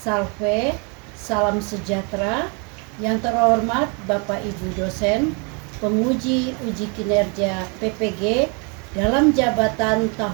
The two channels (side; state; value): left; quieter; 34.3 dB